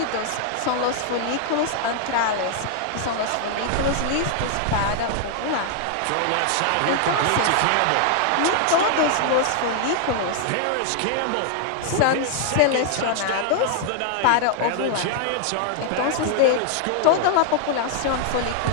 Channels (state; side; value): different; both; correlation 0.00